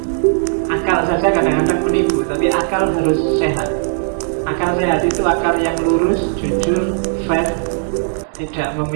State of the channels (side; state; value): left; silent; 68 dB below the other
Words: Akal saja kadang-kadang menipu, tapi akal harus sehat. Akal sehat itu akal yang lurus, jujur, fair, tidak